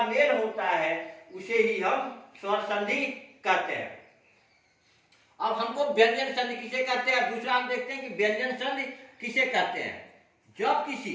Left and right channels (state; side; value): identical; both; correlation 1.00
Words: मेल होता है उसे ही हम स्वर संधि कहते हैं। अब हमको व्यंजन संधि किसे कहते हैं, दूसरा हम देखते हैं कि व्यंजन संधि किसे कहते हैं। जब